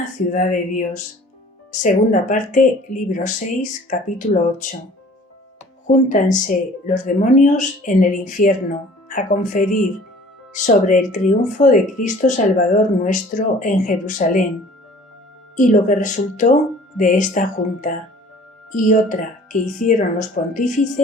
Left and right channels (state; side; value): normal; both; correlation 0.50